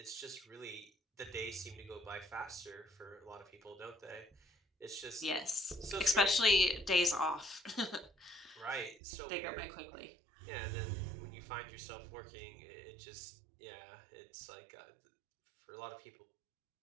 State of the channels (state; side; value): drops out; left; at 9.0 s